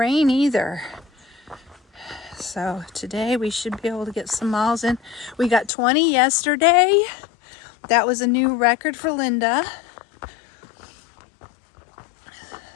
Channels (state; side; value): drops out; right; at 5.7 s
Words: either. So today we should be able to get some miles in. We got 20 yesterday. That was a new record for Linda.